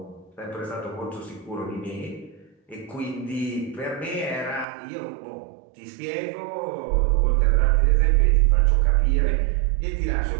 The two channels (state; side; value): drops out; left; at 4.7 s